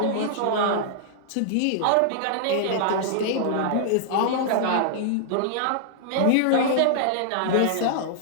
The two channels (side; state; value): both; different; correlation -0.01